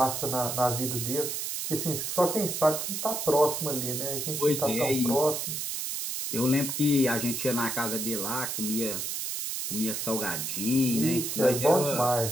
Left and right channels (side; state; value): right; noise; hiss, 3 dB below the sound